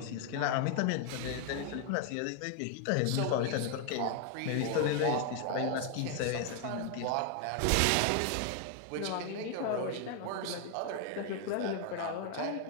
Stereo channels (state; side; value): different; both; correlation 0.00